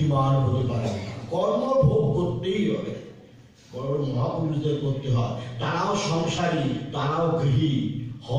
হতে পারে না কর্ম ভোগ করতেই হবে বড় মহাপুরুষদের করতে হয় তারাও সংসারী তারাও গৃহী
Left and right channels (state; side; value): identical; both; correlation 1.00